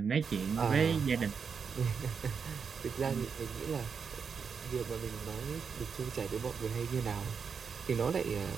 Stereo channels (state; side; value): quieter; left; 6.1 dB